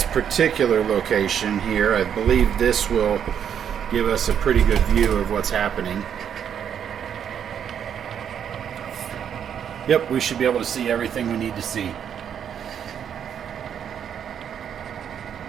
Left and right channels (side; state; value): left; quieter; 8.5 dB